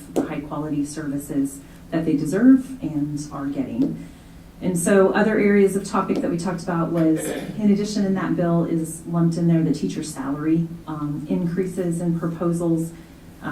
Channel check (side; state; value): both; identical; correlation 1.00